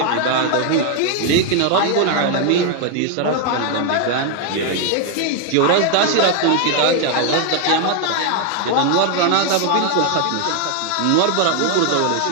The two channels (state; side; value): different; both; correlation 0.00